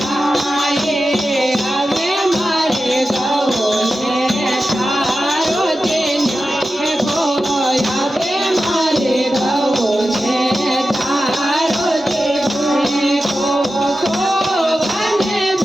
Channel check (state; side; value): normal; both; correlation 0.92